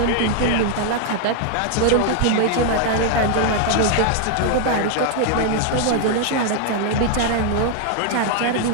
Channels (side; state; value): both; different; correlation 0.00